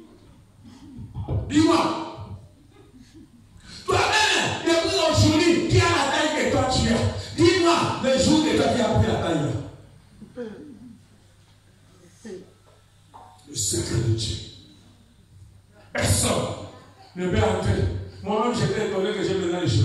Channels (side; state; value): both; identical; correlation 1.00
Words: Dis-moi. Toi-même, depuis aujourd'hui, qui a la taille que toi tu as? Dis-moi le jour que toi tu as pris la taille. Le secret de Dieu. Personne ne peut entrer. Moi-même, j'étais étonné que j'ai besoin de